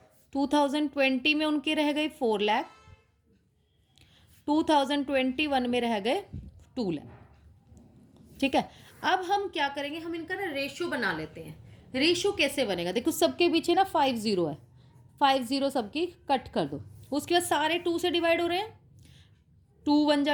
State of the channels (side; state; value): both; identical; correlation 1.00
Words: 2020 में उनके रह गए 4 लाख। 2021 में रह गए 2 लाख, ठीक है। अब हम क्या करेंगे, हम इनका ना रेशियो बना लेते हैं। रेशियो कैसे बनेगा, देखो सबके पीछे ना 5 0 है, 5 0 सबकी कट कर दो। उसके बाद सारे 2 से डिवाइड हो रहे हैं। 2 1 जा